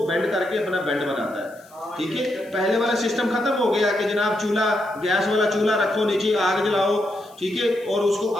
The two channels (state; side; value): noise; left; hiss, 27 dB below the sound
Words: बेंड करके अपना बेंड बनाता है। ठीक है, पहले वाला सिस्टम खत्म हो गया कि जनाब चूल्हा, गैस वाला चूल्हा रखो, नीचे आग जलाओ, ठीक है, और उसको